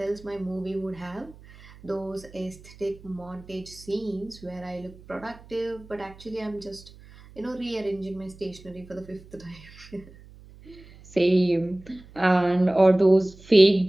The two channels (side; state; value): right; noise; hum, 21 dB below the sound